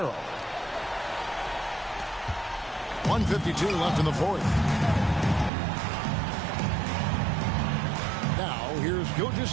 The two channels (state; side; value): drops out; left; at 5.5 s